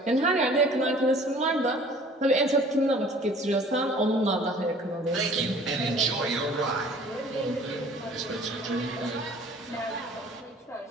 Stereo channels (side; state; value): both; normal; correlation 0.50